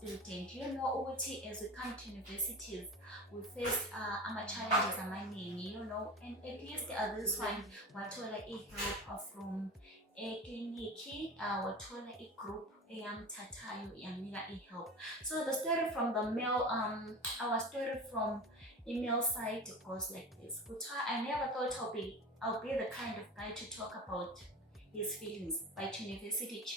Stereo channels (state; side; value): normal; both; correlation 0.31